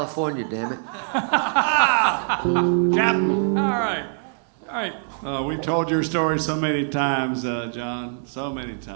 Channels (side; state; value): left; silent; digital silence